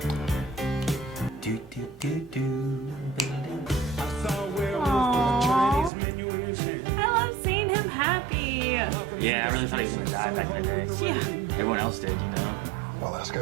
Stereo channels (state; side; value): drops out; left; at 5.9 s